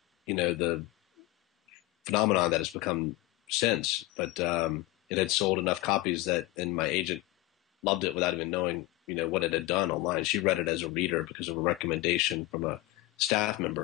phenomenon that has become since, but it had sold enough copies and my agent loved it without even knowing, what it had done online. She read it as a reader because of a recommendation from a staff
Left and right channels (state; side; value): quieter; right; 18.9 dB